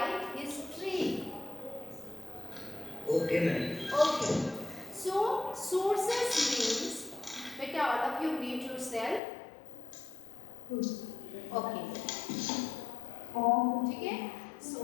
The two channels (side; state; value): right; drops out; at 9.2 s